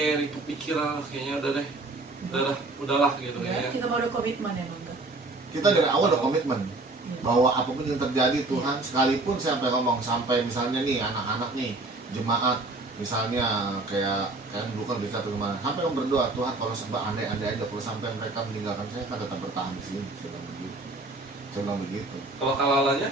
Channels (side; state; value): left; quieter; 3.1 dB